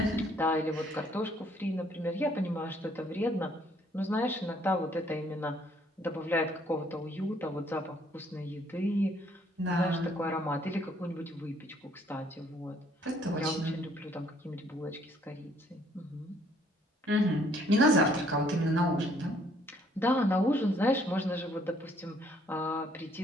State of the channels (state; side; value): normal; both; correlation 0.64